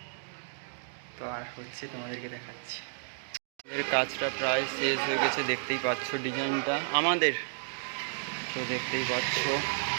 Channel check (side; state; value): left; silent; digital silence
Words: তো আর হচ্ছে, তোমাদেরকে দেখাচ্ছি। আমাদের কাজটা প্রায় শেষ হয়ে গেছে, দেখতেই পাচ্ছ ডিজাইনটা আমাদের। তো দেখতেই পাচ্ছ